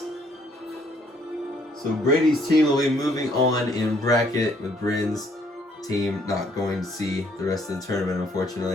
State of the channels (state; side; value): normal; both; correlation 0.65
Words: So Brady's team will be moving on in bracket with Bryn's team not going to see the rest of the tournament,